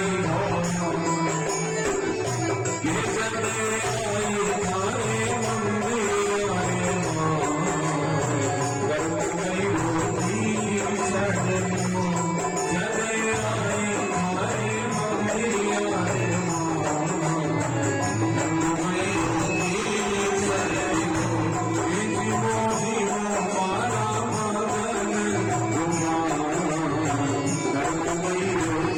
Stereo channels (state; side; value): identical; both; correlation 1.00